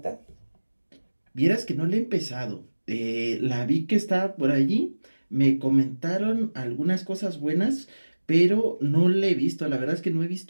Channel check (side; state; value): both; inverted; correlation -1.00